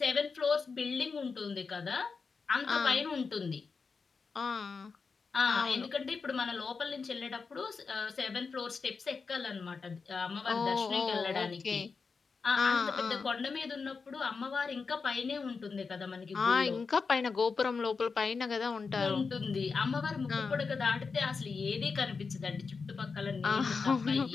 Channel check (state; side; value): quieter; right; 4.9 dB